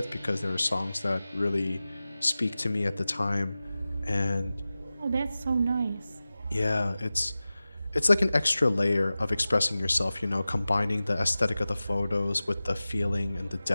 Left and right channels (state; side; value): inverted; both; correlation -0.96